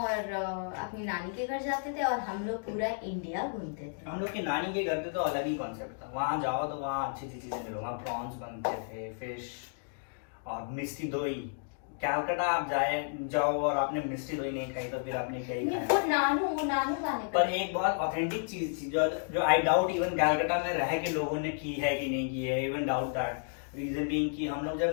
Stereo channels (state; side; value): silent; right; digital silence